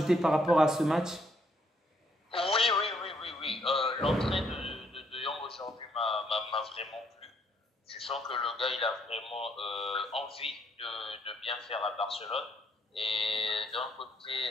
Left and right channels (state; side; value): normal; both; correlation 0.70